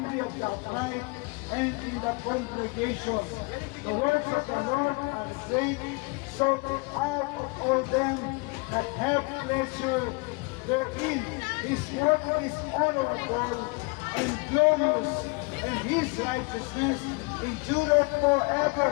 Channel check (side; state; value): right; quieter; 29.2 dB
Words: of the upright and in the congregation. The words of the Lord are great, sought out of all them that have pleasure therein. His work is honorable and glorious, and His righteousness endureth forever.